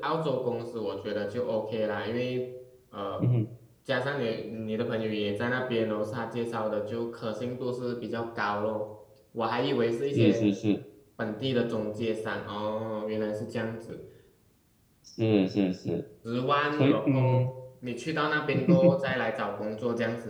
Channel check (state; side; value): identical; both; correlation 1.00